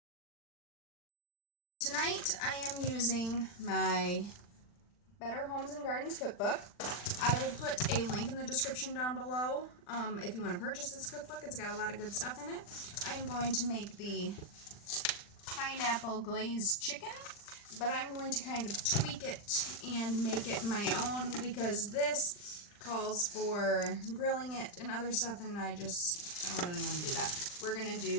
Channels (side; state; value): right; late; 40 ms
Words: Tonight I am using my Better Homes and Gardens cookbook. I will put a link in the description down below if you want to purchase this cookbook. It's got a lot of good stuff in it. I am going to make the pineapple glazed chicken, but I'm going to kind of tweak it and make it my own because this calls for grilling it and other stuff, and I don't really want to do that. We're going to